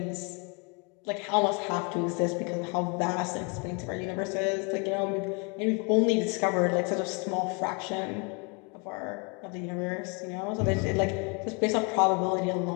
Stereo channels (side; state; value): right; quieter; 33.2 dB